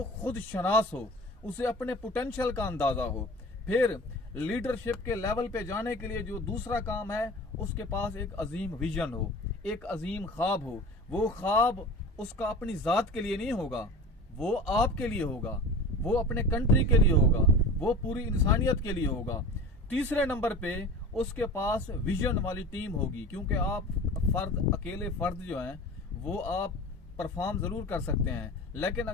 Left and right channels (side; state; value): both; normal; correlation 0.36